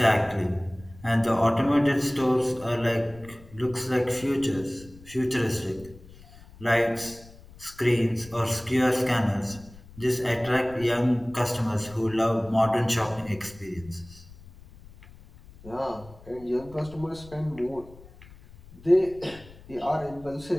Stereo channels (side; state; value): left; noise; rumble, 21 dB below the sound